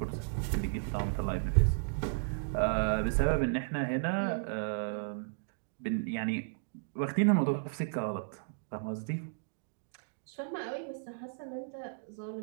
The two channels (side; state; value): left; silent; digital silence